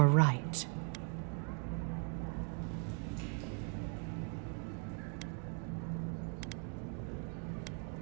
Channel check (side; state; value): left; quieter; 39.1 dB